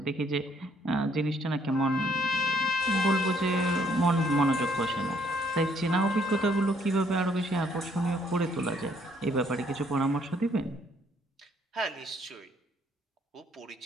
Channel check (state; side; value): normal; both; correlation 0.66